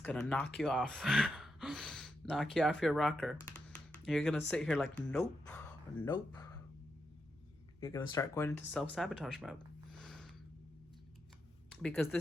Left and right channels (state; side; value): normal; both; correlation 0.84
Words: to knock you off. Knock you off your rocker. You're going to sit here like, nope, nope. You're going to start going into self-sabotage mode. Because